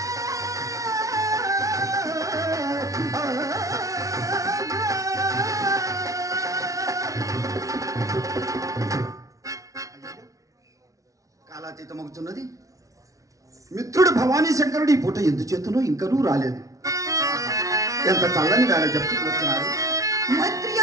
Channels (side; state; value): left; late; 0.17 ms